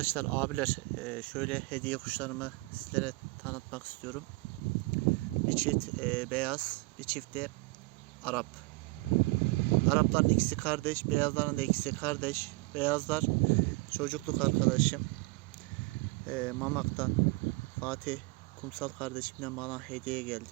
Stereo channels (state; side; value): quieter; left; 24.7 dB